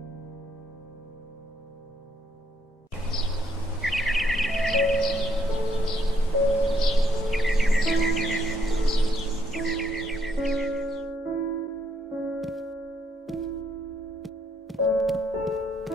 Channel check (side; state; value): both; normal; correlation 0.71